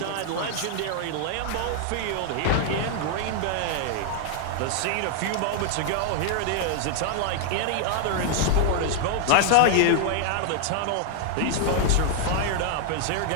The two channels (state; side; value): different; both; correlation 0.00